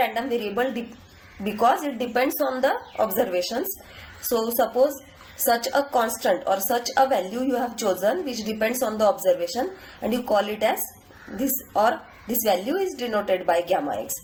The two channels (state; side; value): identical; both; correlation 1.00